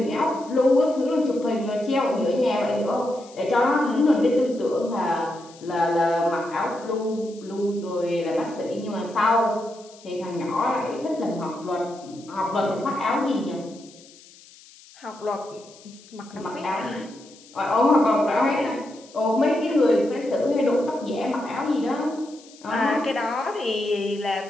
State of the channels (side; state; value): left; noise; hiss, 23 dB below the sound